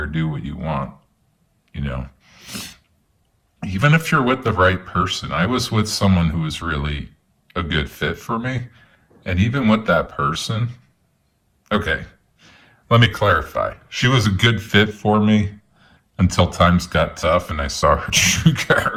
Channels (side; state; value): both; identical; correlation 1.00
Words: do what you want, you know. Even if you're with the right person, I was with someone who was really a good fit for me. And even with that person, okay, let me clarify. She was a good fit for me until times got tough and I saw her true